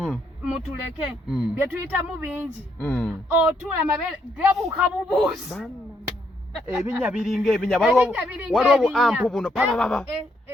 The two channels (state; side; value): normal; both; correlation 0.75